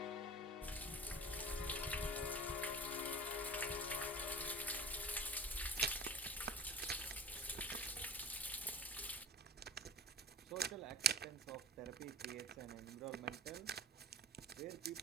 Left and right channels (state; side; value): normal; both; correlation 0.37